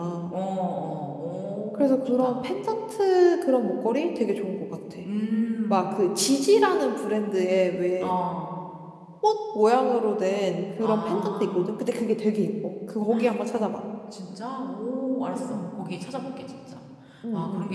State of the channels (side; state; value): both; identical; correlation 1.00